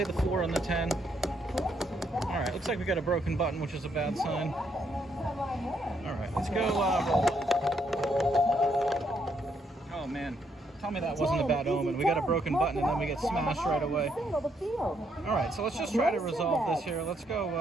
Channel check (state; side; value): normal; both; correlation 0.74